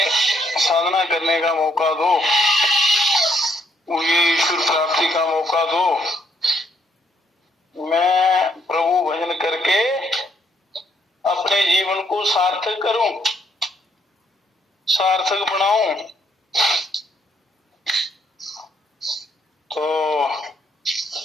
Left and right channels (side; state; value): both; normal; correlation 0.72